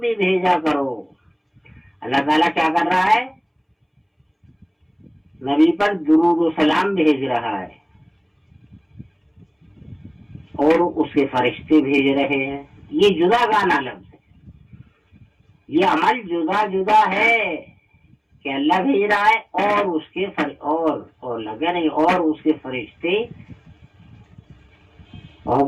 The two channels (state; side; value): identical; both; correlation 1.00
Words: بھیجا کرو. اللہ تعالیٰ کیا کر رہا ہے؟ نبی پر درود و سلام بھیج رہا ہے اور اس کے فرشتے بھیج رہے ہیں. یہ جدا گانا لفظ ہے، یہ عمل جدا جدا ہے کہ اللہ بھیج رہا ہے اور اس کے اور لگے نہیں اور اس کے فرشتے.